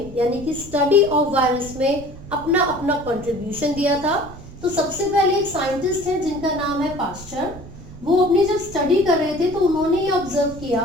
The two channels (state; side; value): noise; right; rumble, 15 dB below the sound